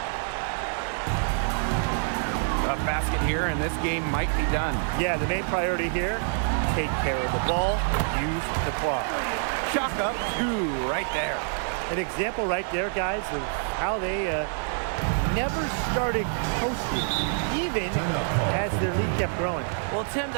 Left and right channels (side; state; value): left; silent; 60 dB below the other